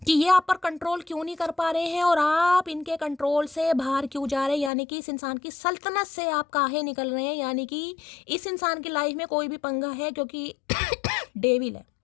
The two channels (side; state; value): right; drops out; at 4.7 s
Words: कि ये आप पर कंट्रोल क्यों नहीं कर पा रहे हैं और आप इनके कंट्रोल से बाहर क्यों जा रहे हैं, यानी कि इस इंसान की सल्तनत से आप काहे निकल रहे हैं, यानी कि इस इंसान की लाइफ में कोई भी पंगा है क्योंकि डेविल है,